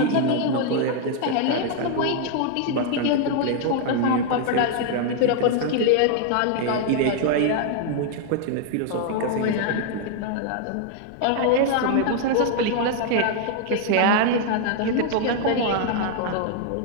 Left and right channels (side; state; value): both; different; correlation 0.00